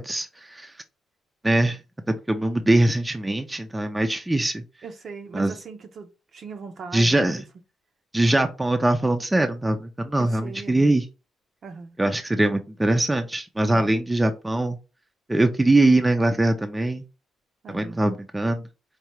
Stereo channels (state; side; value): normal; both; correlation 0.97